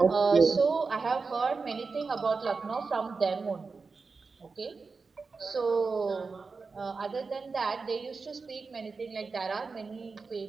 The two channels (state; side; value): quieter; left; 4.5 dB